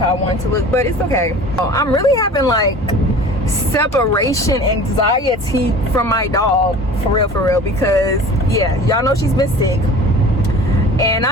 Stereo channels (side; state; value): both; normal; correlation 0.41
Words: I want to look, but it's okay. I'm really having like separation anxiety from my dog, for real, because yeah, y'all know she's been sick, and